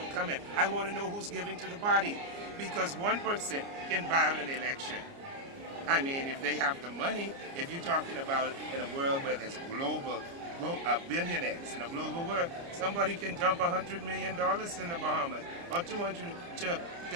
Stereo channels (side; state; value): left; late; 29 ms